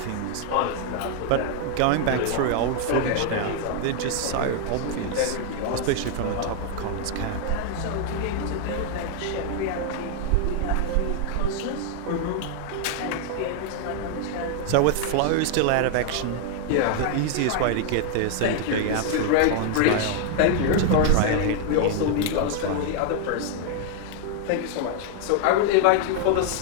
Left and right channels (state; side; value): different; both; correlation 0.00